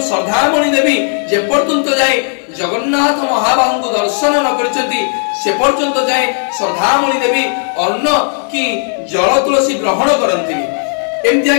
श्रद्धामणि देवी जे पर्यंत जाए जगन्नाथ महाबाहु को दर्शन न करचंती से पर्यंत जाए श्रद्धामणि देवी अन्न की जल तुलसी ग्रहण करंतिनी। एमती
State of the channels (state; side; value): silent; right; 71 dB below the other